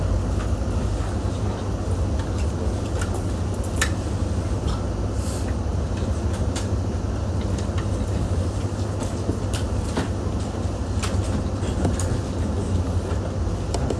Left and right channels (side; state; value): both; identical; correlation 1.00